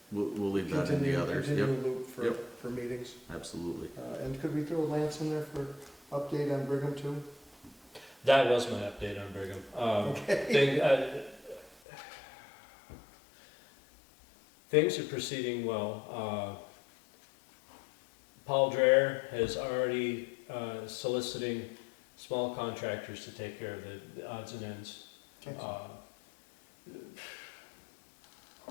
We'll leave that in the others. continual Yep, loop for, Yep. for meetings. absolutely. And could we throw Lance in there for update on Brigham too? That was my update on Brigham. Things are proceeding well. Paul Dreher has already soliciting small contractors to take care of the odds and ends. Okay.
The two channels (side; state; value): right; drops out; at 11.8 s